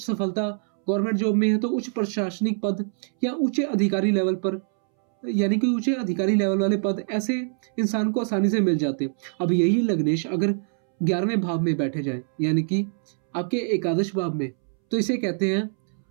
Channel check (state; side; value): silent; left; 62 dB below the other